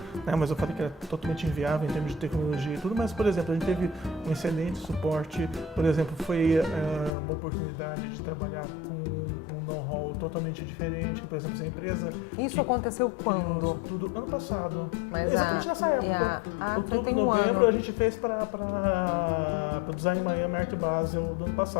né? Mas eu falei que era totalmente inviável em termos de tecnologia e tudo, mas, por exemplo, a gente teve um excelente suporte, por exemplo, foi uma oportunidade de trabalhar com um know-how totalmente diferente, por exemplo, essa empresa... Isso aconteceu quando? Isso tudo ano passado, mas exatamente nessa época, outubro, novembro, a gente fez para o Design Miami Art Basel do ano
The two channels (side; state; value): right; drops out; at 7.1 s